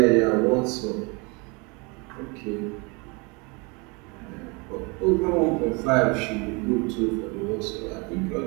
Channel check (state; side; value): quieter; left; 29.4 dB